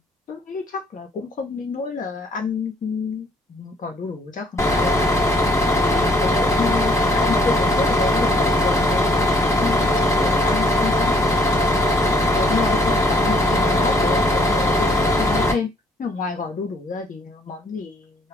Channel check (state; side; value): normal; both; correlation 0.63